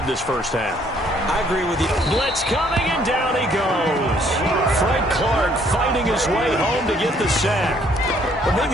this first half. I agree with you. Blitz coming, and down he goes. Frank Clark fighting his way home to get the sack. But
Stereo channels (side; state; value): both; normal; correlation 0.64